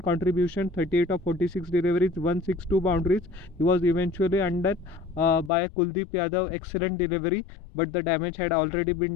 contribution, 38 of 46 deliveries, 162 boundaries. He was eventually undone by Kuldeep Yadav. Excellent delivery, but the damage had already been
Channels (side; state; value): right; drops out; at 5.5 s